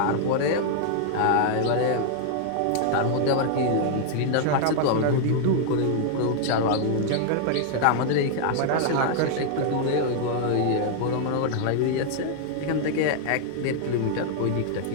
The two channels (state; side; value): different; both; correlation -0.01